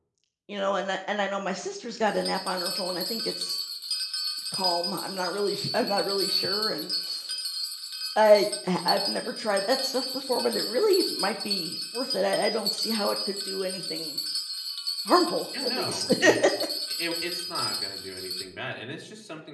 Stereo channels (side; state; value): both; identical; correlation 1.00